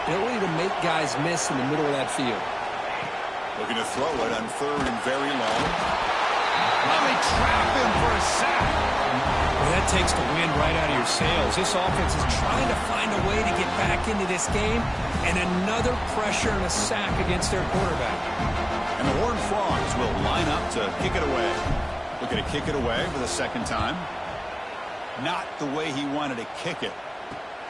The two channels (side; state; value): both; identical; correlation 1.00